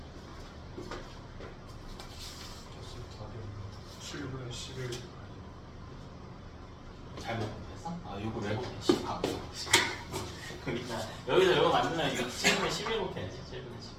7분의 11 잘못 곱했어? 요거 왜 곱해? 10 하고 그러니까 여기서 요거 만들면 이거 7분의 11 곱해야지. 7분의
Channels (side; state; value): both; identical; correlation 1.00